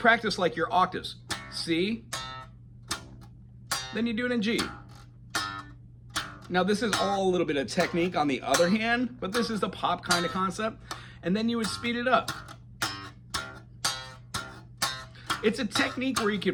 practice like your octaves. C, then you do it in G, Now this is all a little bit of technique on the other hand, but this is the pop kind of concept. And then you would speed it up. It's a technique where you can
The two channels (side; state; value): both; identical; correlation 1.00